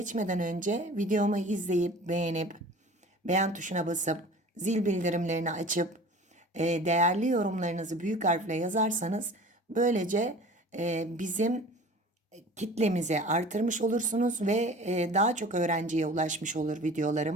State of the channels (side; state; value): both; normal; correlation 0.42